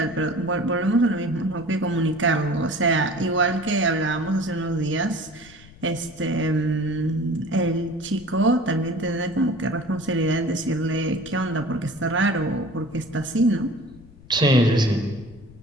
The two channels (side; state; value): left; noise; rumble, 21 dB below the sound